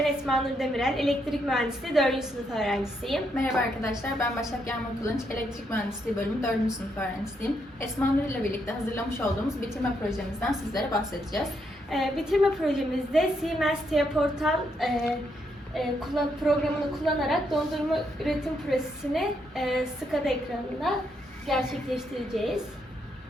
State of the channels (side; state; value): both; normal; correlation 0.77